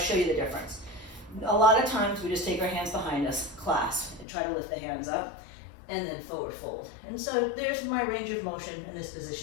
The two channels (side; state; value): right; drops out; at 4.2 s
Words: you the difference. A lot of times we just take our hands behind us, clasp, and try to lift the hands up, and then forward fold. And so there's my range of motion in this